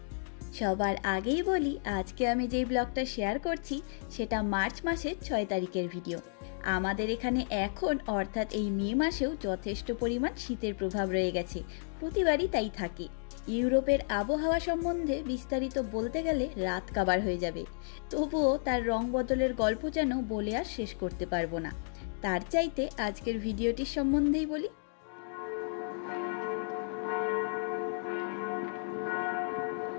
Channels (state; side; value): silent; right; digital silence